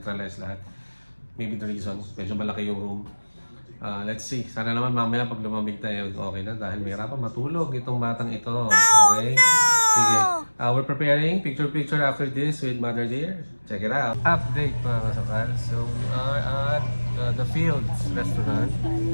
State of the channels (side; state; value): both; inverted; correlation -1.00